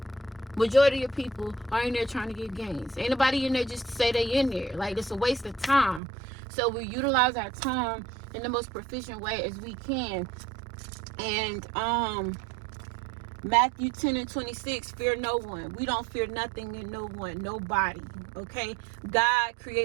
Majority of people are in there trying to get gains. Ain't nobody in there just to say they in there. Like, it's a waste of time. So we utilize our time in the most proficient way as we can. And Matthew 10:26, fear no one. We don't fear nothing and no one, nobody. Okay, God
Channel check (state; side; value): drops out; left; at 6.0 s